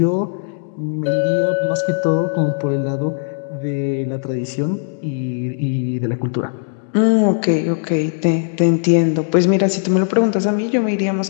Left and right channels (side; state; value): right; silent; digital silence